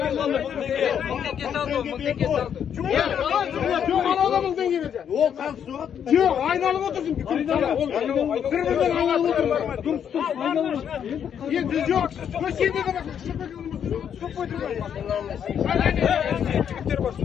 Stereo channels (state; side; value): quieter; right; 8.5 dB